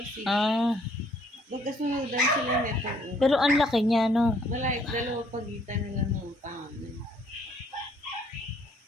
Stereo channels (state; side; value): normal; both; correlation 0.64